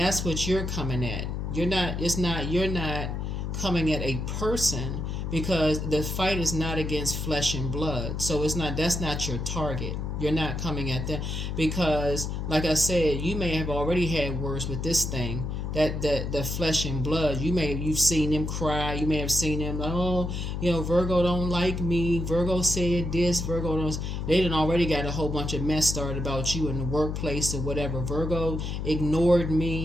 what you're coming at. You're not coming at a person, because the fight is not against flesh and blood. So that's not your target. You're not coming at them, because, like I said, you may have already had words with this thing, that the flesh and blood. You've seen them cry. You may have seen them, oh, Virgo don't like me. Virgo said this. Virgo don't. They done already got a whole bunch of mess started about you in the workplace or whatever. Virgo ignored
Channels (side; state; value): left; noise; hum, 3 dB below the sound